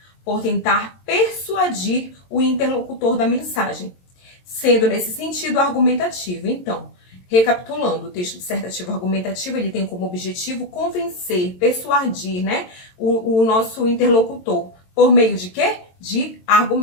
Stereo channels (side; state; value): right; late; 22 ms